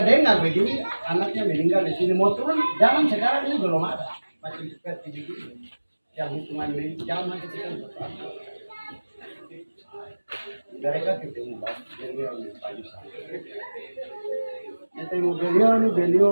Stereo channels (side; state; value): both; inverted; correlation -1.00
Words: dengar begini anaknya meninggal di sini mau turun jalan sekarang ini belum ada masih seperti begini yang hitungan jalan kita mereka ketemu